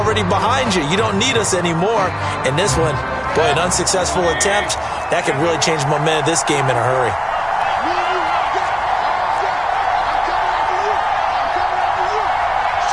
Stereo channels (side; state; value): both; identical; correlation 1.00